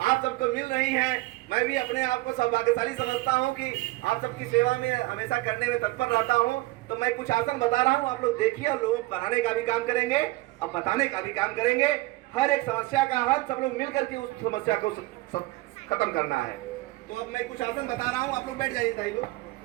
आप सबको मिल रही हैं। मैं भी अपने आप को सौभाग्यशाली समझता हूं कि आप सबकी सेवा में हमेशा करने में तत्पर रहता हूं। तो मैं कुछ आसन बता रहा हूं, आप लोग देखिए और लोगों को बनाने का भी काम करेंगे और बताने का भी काम करेंगे। हर एक समस्या का हल सब लोग मिल करके उस समस्या को खत्म करना है। तो अब मैं कुछ आसन बता रहा हूँ, आप लोग बैठ जाइए, भाई लोग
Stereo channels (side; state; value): left; quieter; 20.5 dB